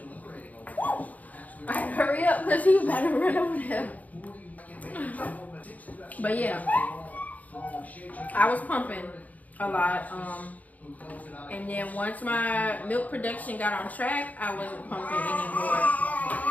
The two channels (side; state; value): right; late; 0.075 ms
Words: I had to hurry up because he was about to run over there. But yeah, I was pumping a lot. And then once my milk production got on track, I wasn't pumping anymore.